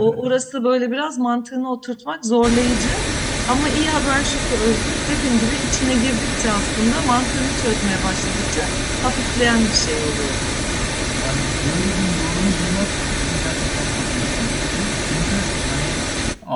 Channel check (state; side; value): identical; both; correlation 1.00